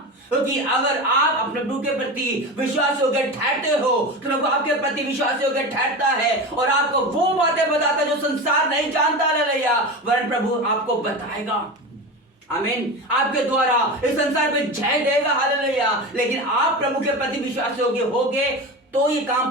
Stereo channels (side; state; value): both; normal; correlation 0.25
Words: क्योंकि अगर आप अपने प्रभु के प्रति विश्वास योग्य ठहरते हो तो प्रभु आपके प्रति विश्वास योग्य ठहरता है और आपको वो बातें बताता है जो संसार नहीं जानता। हालेलुया। वरन प्रभु आपको बताएगा। आमीन। आपके द्वारा इस संसार पे जय देगा। हालेलुया। लेकिन आप प्रभु के प्रति विश्वास योग्य होगे तो ये